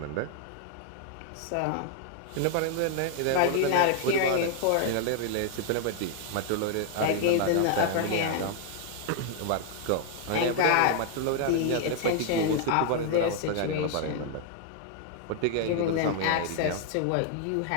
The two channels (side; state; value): both; different; correlation 0.00